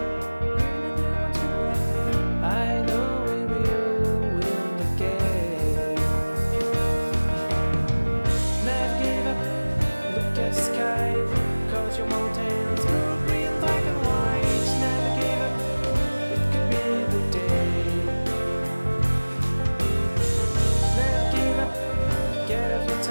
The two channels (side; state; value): both; inverted; correlation -1.00